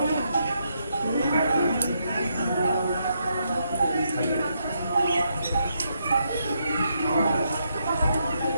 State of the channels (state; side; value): inverted; both; correlation -0.79